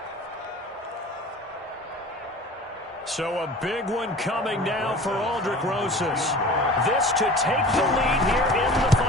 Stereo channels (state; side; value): normal; both; correlation 0.40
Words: So a big one coming now for Aldrich Rosas. This to take the lead here in the